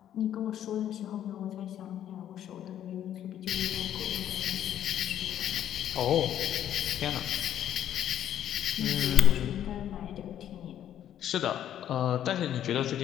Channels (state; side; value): quieter; right; 10.8 dB